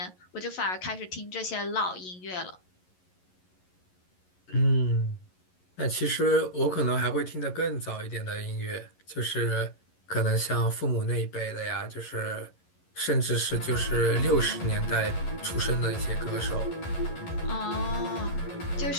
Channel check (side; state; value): right; late; 11 ms